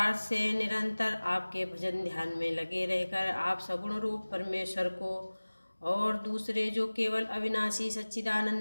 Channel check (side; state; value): both; inverted; correlation -1.00